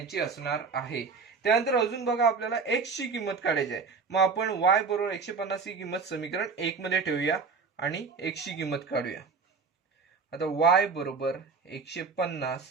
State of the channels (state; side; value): quieter; left; 5.0 dB